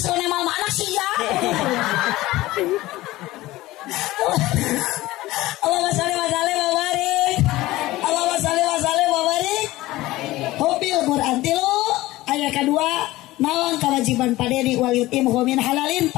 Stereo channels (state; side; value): quieter; right; 17.8 dB